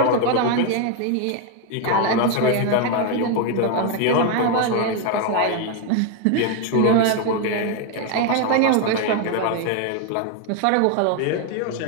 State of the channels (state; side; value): different; both; correlation 0.01